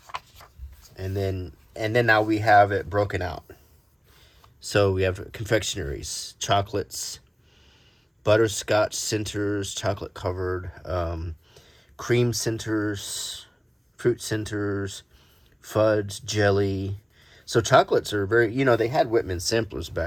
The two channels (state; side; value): identical; both; correlation 1.00